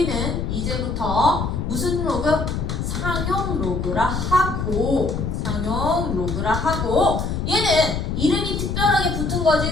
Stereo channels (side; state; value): left; noise; rumble, 2 dB below the sound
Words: 이제부터 무슨 로그? 상용 로그라 하고 얘는 이름이 특별하게 붙은 거지.